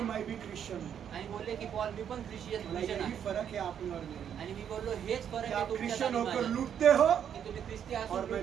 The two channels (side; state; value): left; quieter; 8.8 dB